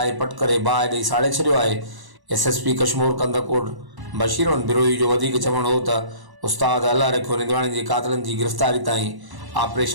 पट करे बाहि ॾेई साड़े छॾियो आहे। एसएसपी कश्मीर कंदकोट बशीर अहमद बिरोही जो वधीक चवणु हो त उस्ताद अल्लाह रखियो निंदवाणी जे क़ातिलनि जी गिरफ़्तारी ताईं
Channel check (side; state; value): left; late; 1.1 ms